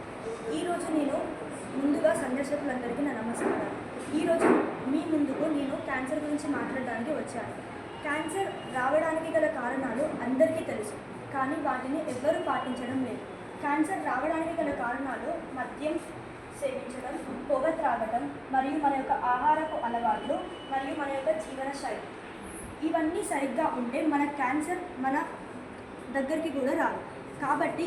ఈరోజు నేను ముందుగా సందర్శకులందరికీ నా నమస్కారం. ఈరోజు మీ ముందుకు నేను క్యాన్సర్ గురించి మాట్లాడడానికి వచ్చాను. క్యాన్సర్ రావడానికి గల కారణాలు అందరికీ తెలుసు, కానీ వాటిని ఎవ్వరూ పాటించడం లేదు. క్యాన్సర్ రావడానికి గల కారణాలు మద్యం సేవించడం, పొగ త్రాగడం, మరియు మన యొక్క ఆహారపు అలవాట్లు మరియు మన యొక్క జీవన శైలి. ఇవన్నీ సరిగ్గా ఉంటే మన క్యాన్సర్ మన దగ్గరికి కూడా రాదు. కాబట్టి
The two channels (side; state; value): both; identical; correlation 1.00